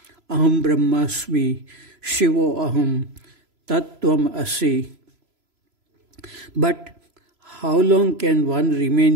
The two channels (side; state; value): left; late; 3.0 ms